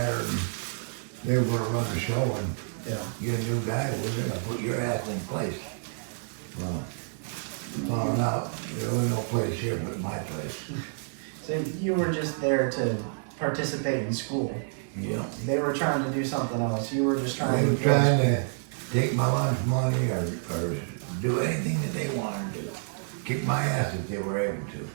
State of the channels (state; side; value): silent; left; 59 dB below the other